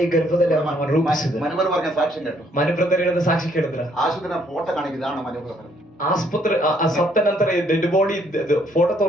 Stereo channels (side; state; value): both; normal; correlation 0.67